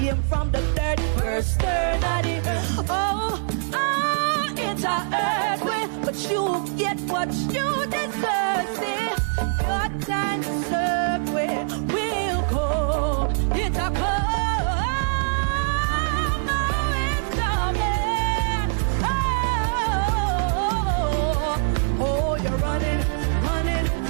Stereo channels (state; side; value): silent; left; digital silence